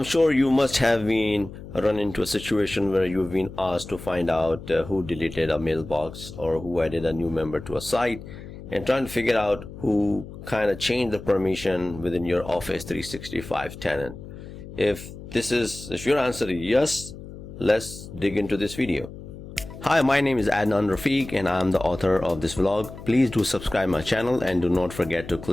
sure you must have been run into a situation where you've been asked to find out who deleted a mailbox or who added a new member to a site, and trying to figure out who kind of changed the permission within your Office 365 tenant. If your answer is yes, let's dig into this video. Hi, my name is Adnan Rafiq and I'm the author of this vlog. Please do subscribe my channel and do not forget to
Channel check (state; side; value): noise; left; hum, 14 dB below the sound